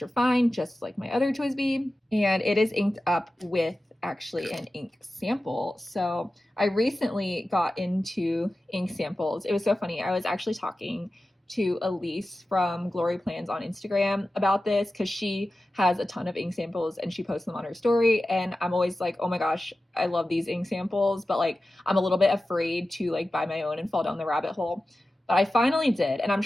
fine, just like my other Twisbee, and it is inked up with actually an ink sample. So I recently got into ink samples. It was so funny. I was actually talking to Elise from Glory Plans on Instagram about this because she has a ton of ink samples and she posts them on her story. And I'm always like, oh my gosh, I love these ink samples, but like I'm a little bit afraid to like buy my own and fall down the rabbit hole. But I finally did, and I'm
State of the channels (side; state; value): both; normal; correlation 0.94